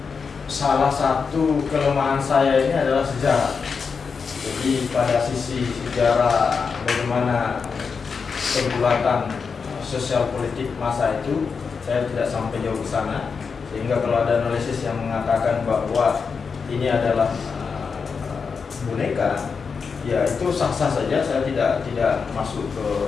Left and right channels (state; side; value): quieter; right; 5.5 dB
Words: Salah satu kelemahan saya ini adalah sejarah. Jadi pada sisi sejarah bagaimana pergulatan sosial politik masa itu, saya tidak sampai jauh ke sana. Sehingga kalau ada analisis yang mengatakan bahwa ini adalah boneka, ya itu sah-sah saja. Saya tidak masuk ke